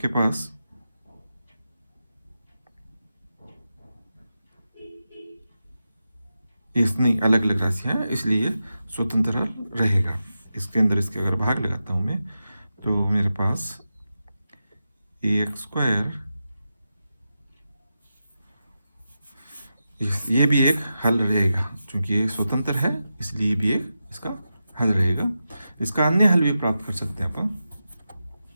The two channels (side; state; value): both; inverted; correlation -0.90